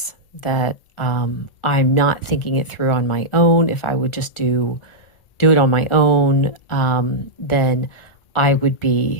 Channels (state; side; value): late; right; 1.4 ms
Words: that I'm not thinking it through on my own. If I would just do it on my own, then I would